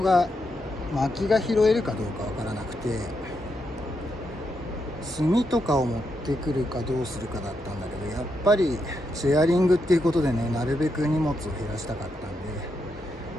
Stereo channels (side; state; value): both; normal; correlation 0.82